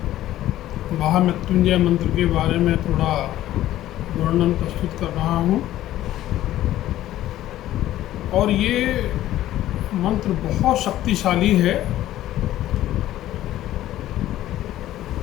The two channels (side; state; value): right; quieter; 13.8 dB